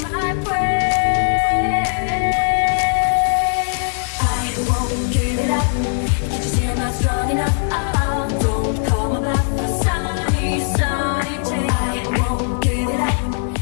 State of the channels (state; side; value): silent; right; digital silence